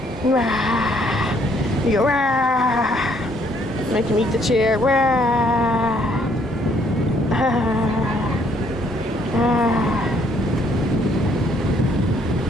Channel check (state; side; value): normal; both; correlation 0.66